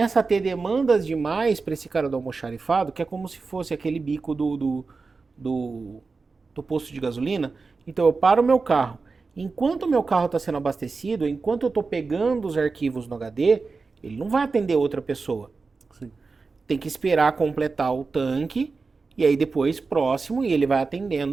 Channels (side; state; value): left; quieter; 4.3 dB